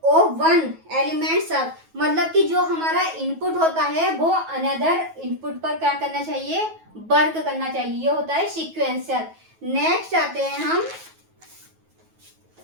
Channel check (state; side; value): late; left; 9.2 ms